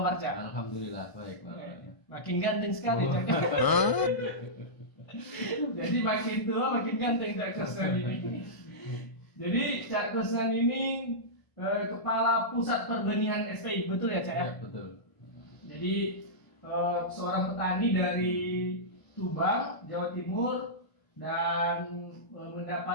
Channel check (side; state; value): right; late; 1.0 ms